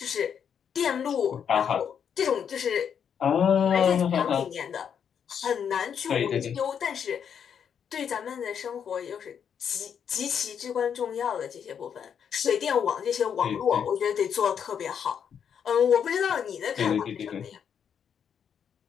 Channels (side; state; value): right; quieter; 7.8 dB